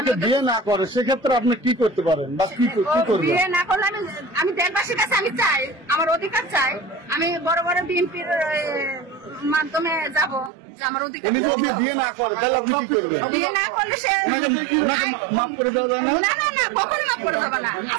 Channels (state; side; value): drops out; left; at 10.5 s